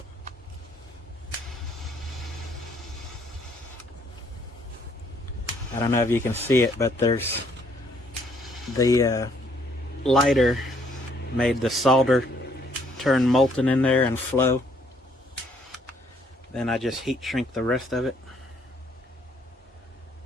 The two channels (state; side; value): normal; both; correlation 0.66